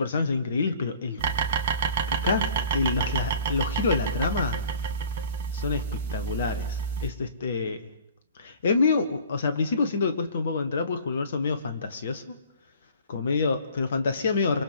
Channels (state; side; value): inverted; both; correlation -0.48